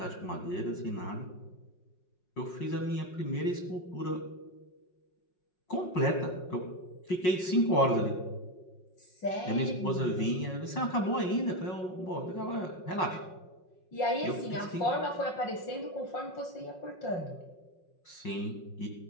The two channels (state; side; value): late; right; 5.5 ms